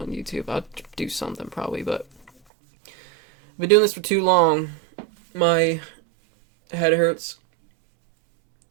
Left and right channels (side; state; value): left; drops out; at 2.3 s